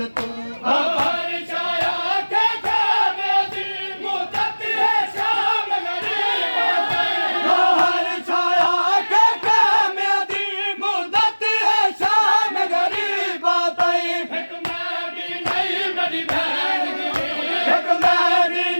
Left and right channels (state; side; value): inverted; both; correlation -1.00